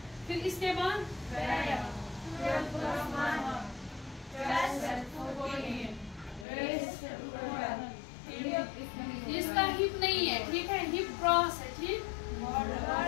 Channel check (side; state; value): right; drops out; at 6.5 s